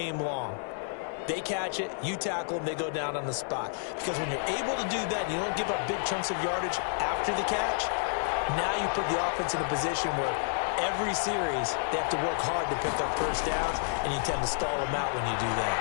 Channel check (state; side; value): silent; right; digital silence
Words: long? They catch it, you tackle them, they go down on the spot. Because when you're able to do that and you don't give up big chunks of yardage after the catch, now you put the offense in a position where every series they have to work hard to pick up first downs, and you tend to stall them out when you do